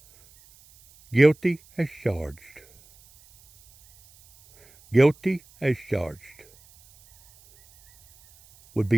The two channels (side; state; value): right; noise; hiss, 29 dB below the sound